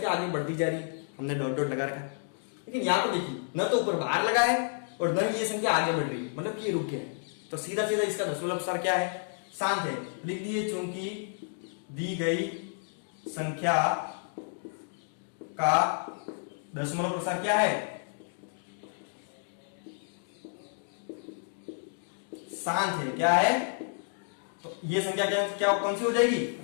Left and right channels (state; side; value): silent; right; digital silence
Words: आगे बढ़ती जा रही है, हमने डॉट डॉट लगा रखा है। लेकिन यहां पर देखिए न तो ऊपर बाहर लगा है और न ये संख्या आगे बढ़ रही है, मतलब कि ये रुक गया है। तो सीधा सीधा इसका दशमलव प्रसार क्या है, शांत है। लिख दिए, चूंकि दी गई संख्या का दशमलव प्रसार क्या है, शांत है। क्या है, तो ये संख्या क्या कौन सी हो जाएगी,